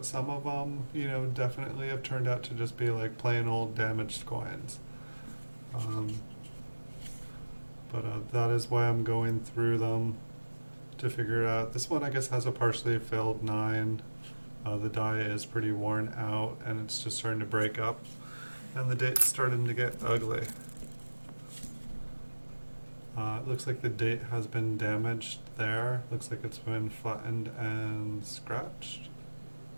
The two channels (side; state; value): both; inverted; correlation -1.00